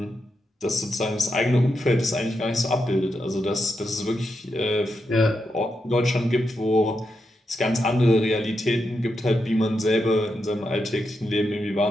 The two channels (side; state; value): both; normal; correlation 0.85